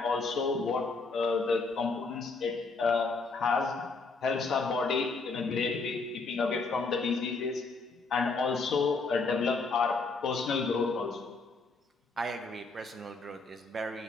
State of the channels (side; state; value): right; quieter; 4.0 dB